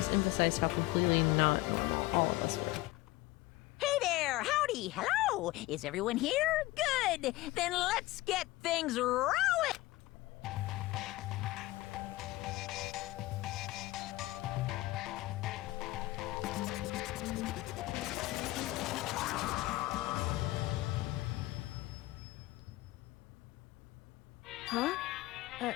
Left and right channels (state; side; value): quieter; right; 18.7 dB